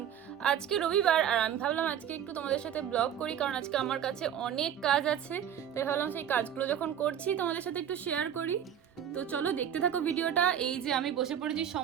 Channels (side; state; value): left; quieter; 9.4 dB